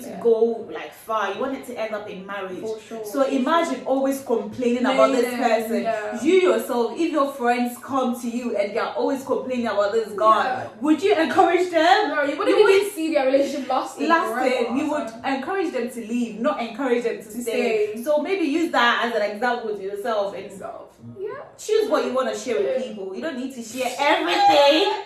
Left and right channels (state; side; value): identical; both; correlation 1.00